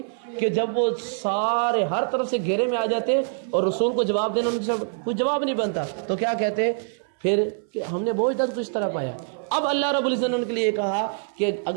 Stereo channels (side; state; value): left; silent; 62 dB below the other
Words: کہ جب وہ سارے ہر طرف سے گھیرے میں آ جاتے اور رسول کو جواب دینا ان سے کوئی جواب نہیں بنتا, تو کیا کہتے پھر کہ ہم نے بہت اجداد کو اس طرح پایا. اب اللہ رب العزت نے ان کے لیے کہا کہ